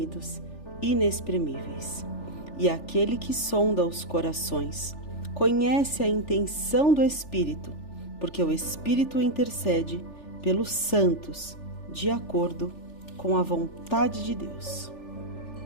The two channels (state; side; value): late; right; 3.4 ms